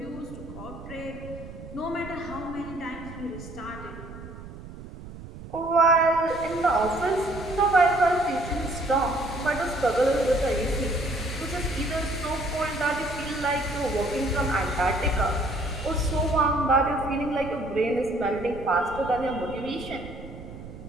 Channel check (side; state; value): right; noise; rumble, 14 dB below the sound